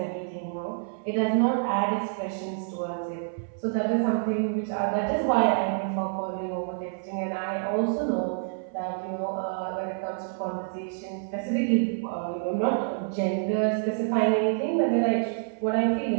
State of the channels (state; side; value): silent; left; 58 dB below the other